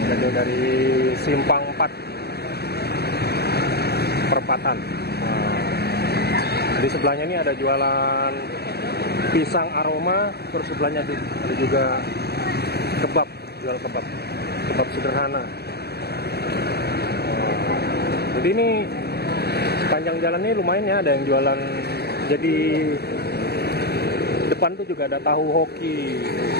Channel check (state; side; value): late; right; 0.47 ms